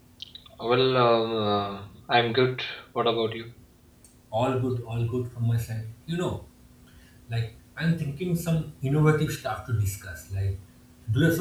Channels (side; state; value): both; identical; correlation 1.00